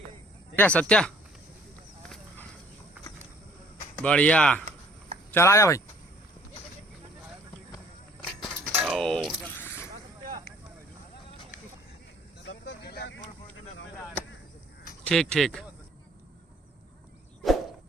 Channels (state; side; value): normal; both; correlation 0.57